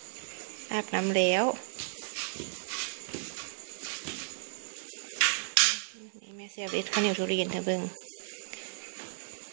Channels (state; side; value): silent; left; digital silence